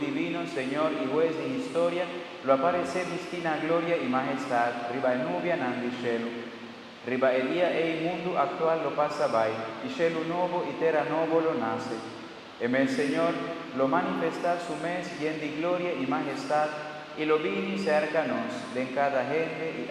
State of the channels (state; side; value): identical; both; correlation 1.00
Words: Señor y juez de historia, lo aparece mistina gloria y majestad, riba el nubia nandi cielo. Riba el día e il mundo actual lo pasa vai, y cielo nuevo y terra nuevo lo nace. En el Señor lo manifesta su mes lleno de gloria y majestad, y lo vini cercanos de cada gente y